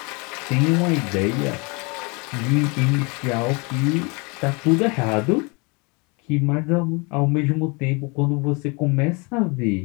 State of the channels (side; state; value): right; quieter; 29.9 dB